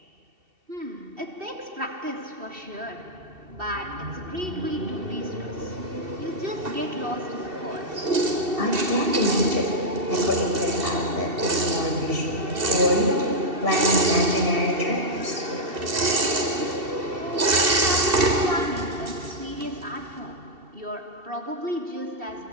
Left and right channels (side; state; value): left; late; 2.7 ms